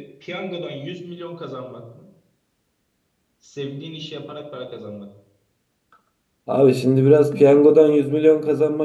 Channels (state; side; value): identical; both; correlation 1.00